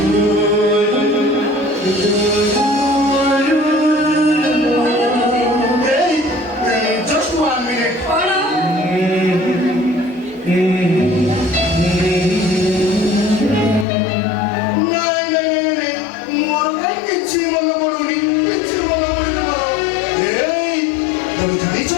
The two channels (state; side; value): drops out; right; at 13.9 s